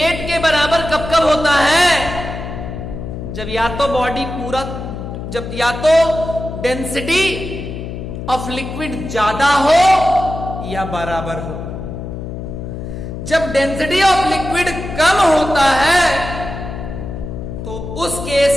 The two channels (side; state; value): left; noise; hum, 8 dB below the sound